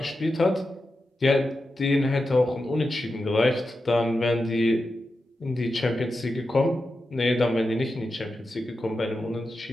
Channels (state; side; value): normal; both; correlation 0.90